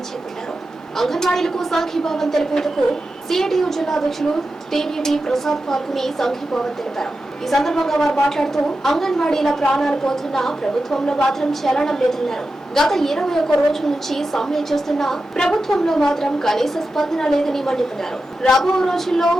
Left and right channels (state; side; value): normal; both; correlation 0.91